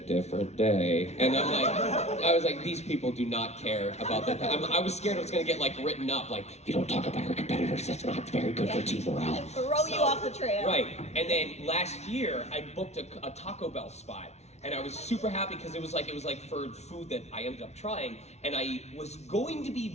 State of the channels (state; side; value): late; right; 0.32 ms